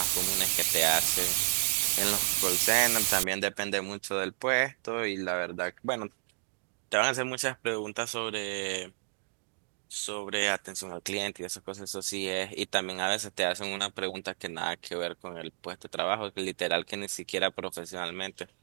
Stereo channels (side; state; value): left; silent; digital silence